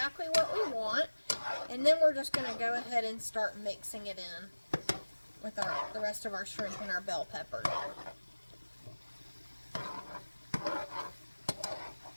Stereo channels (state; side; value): inverted; both; correlation -1.00